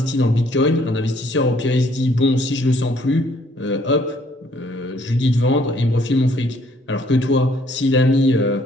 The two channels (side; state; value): both; normal; correlation 0.63